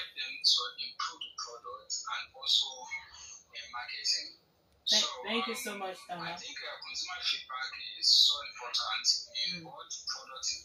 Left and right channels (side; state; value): both; identical; correlation 1.00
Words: them to improve the product and also in marketing. Thank you so much, I Tama. think consumer feedback is so important in both product